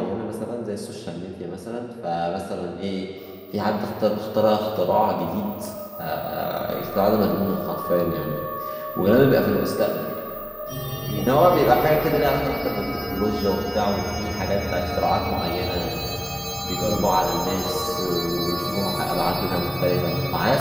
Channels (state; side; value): identical; both; correlation 1.00